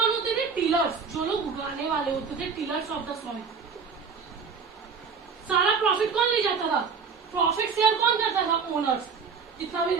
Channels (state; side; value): quieter; left; 5.7 dB